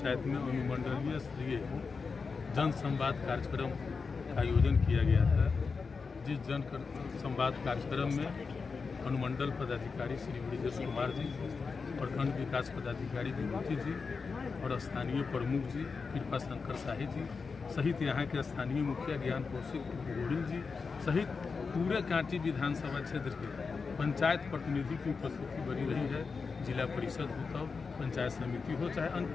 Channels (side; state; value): right; quieter; 4.9 dB